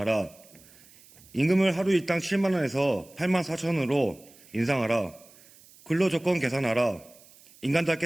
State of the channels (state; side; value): noise; right; hiss, 25 dB below the sound